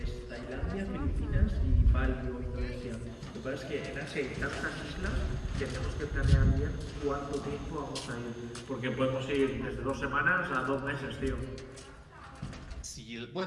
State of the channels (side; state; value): both; identical; correlation 1.00